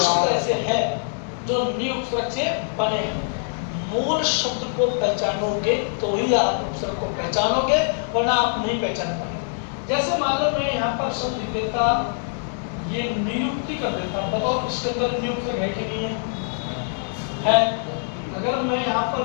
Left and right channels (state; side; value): silent; right; 58 dB below the other